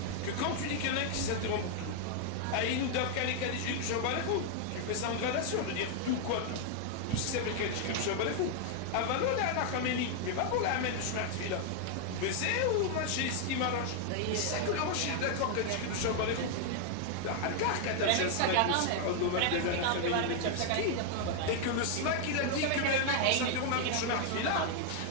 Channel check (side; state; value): both; different; correlation 0.00